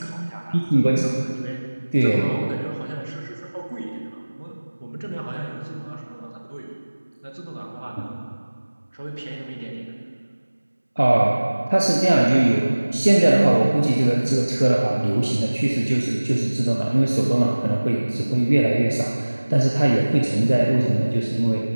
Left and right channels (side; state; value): both; inverted; correlation -1.00